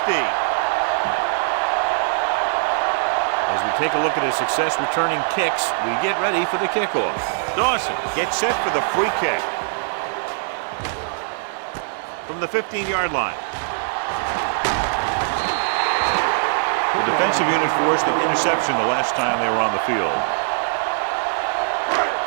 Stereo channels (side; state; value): left; silent; digital silence